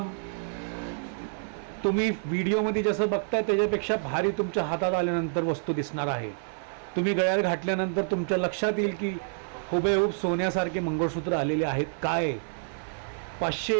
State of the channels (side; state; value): left; silent; 59 dB below the other